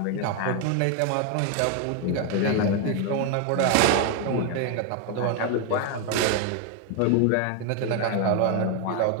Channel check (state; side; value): different; both; correlation 0.01